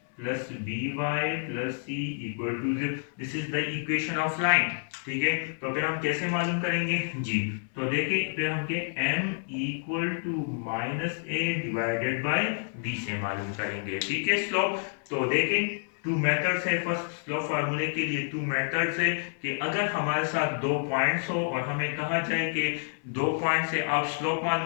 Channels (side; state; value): right; silent; 59 dB below the other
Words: plus B Y plus C equal to 0, this is the equation of line. ठीक है, तो फिर हम कैसे मालूम करेंगे जी, तो देखिए फिर हम के m equal to minus a divided by b से मालूम करेंगे। ठीक है, स्लोप, तो देखें 2 मेथड्स है, फर्स्ट स्लोप फार्मूले के लिए 2 मेथड्स है कि अगर हमारे साथ 2 पॉइंट्स हो और हमें कहा जाए कि 2 पॉइंट से आप स्लोप